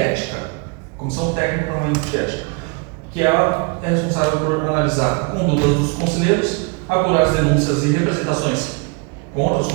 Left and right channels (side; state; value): left; quieter; 32.0 dB